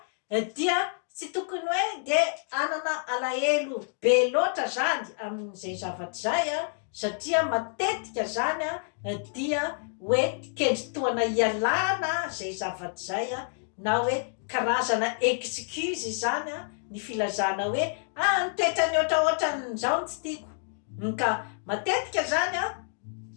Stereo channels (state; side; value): silent; right; digital silence